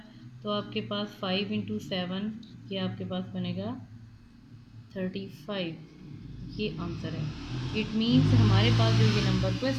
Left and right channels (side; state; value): both; identical; correlation 1.00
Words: तो आपके पास 5 इंटू 7, ये आपके पास बनेगा 35। ये आंसर है। इट मीन्स हमारे पास जो ये नंबर